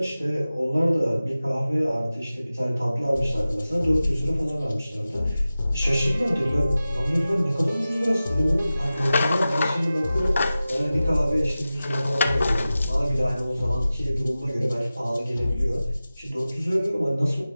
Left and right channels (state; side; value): inverted; both; correlation -0.95